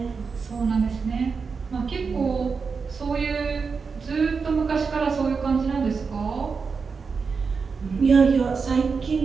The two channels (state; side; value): quieter; left; 5.2 dB